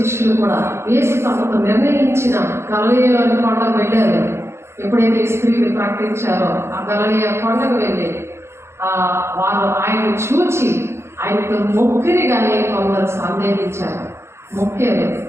కూడా యేసు తమకు నిర్ణయించిన గలిలయలోని కొండకు వెళ్ళారు. ఎప్పుడైతే స్త్రీలు ప్రకటించారో ఆ గలిలయ కొండకు వెళ్ళి వారు ఆయన చూచి ఆయనకు మొక్కిరిగానే కొందరు సందేహించారు. మొక్కారు,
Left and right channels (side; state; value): left; late; 0.13 ms